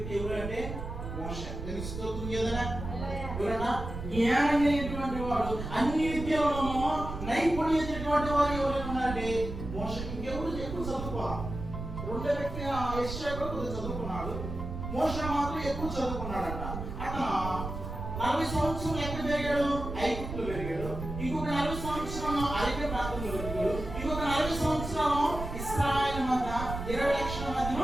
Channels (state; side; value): noise; right; rumble, 7 dB below the sound